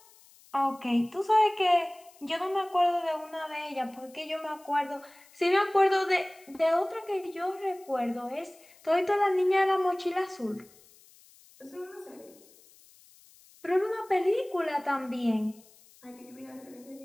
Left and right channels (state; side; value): noise; left; hiss, 26 dB below the sound